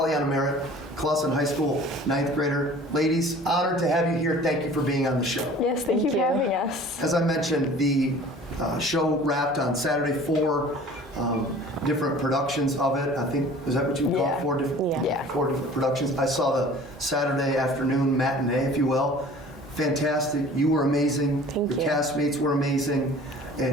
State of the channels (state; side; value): normal; both; correlation 0.46